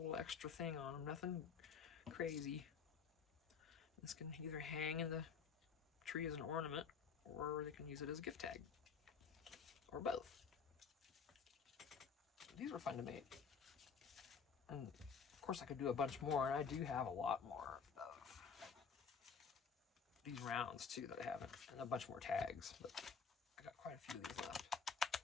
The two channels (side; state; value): right; quieter; 6.1 dB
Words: extra thing on them. Nothing crazy. This can either hang in the tree as an ornament, or they can use it as a gift tag. Or both. These were fun to make. And of course I could do a bunch more, and I do have a lot more of these rounds too that I haven't, and a bunch more tags, but I got quite a few of these left.